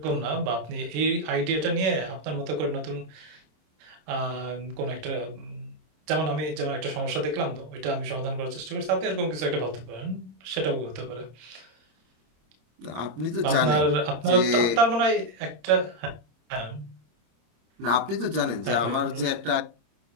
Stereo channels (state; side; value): late; left; 26 ms